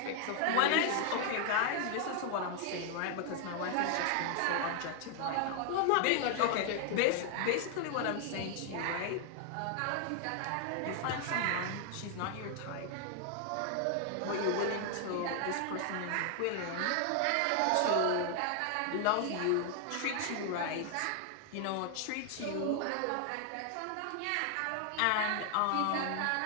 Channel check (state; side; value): different; both; correlation 0.00